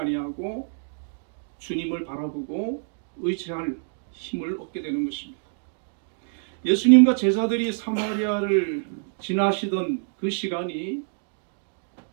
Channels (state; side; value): silent; left; digital silence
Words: 주님을 바라보고 의지할 힘을 얻게 되는 것입니다. 예수님과 제자들이 사마리아를 지나시던 그 시간이